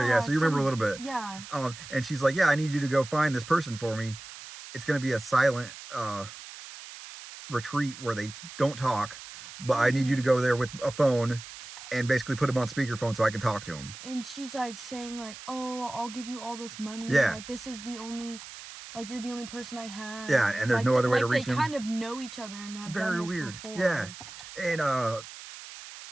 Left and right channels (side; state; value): right; noise; hiss, 14 dB below the sound